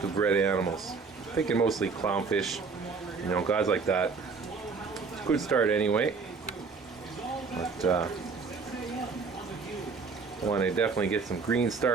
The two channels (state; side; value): quieter; left; 4.8 dB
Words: bred animals. Thinking mostly clownfish, guys like that. Good start anyway. But I want to definitely get some green